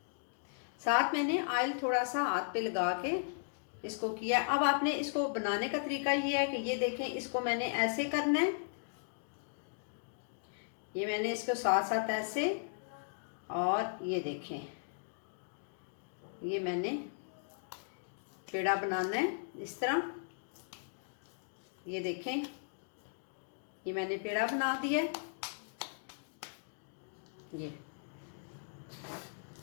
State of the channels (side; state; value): right; silent; digital silence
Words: साथ मैंने ऑयल थोड़ा सा हाथ पे लगा के इसको किया। अब आपने इसको बनाने का तरीका ये है कि ये देखें इसको मैंने ऐसे करना है। ये मैंने इसको साथ साथ ऐसे, और ये देखें ये मैंने पेड़ा बनाना है इस तरह। ये देखें ये मैंने पेड़ा बना दिया। ये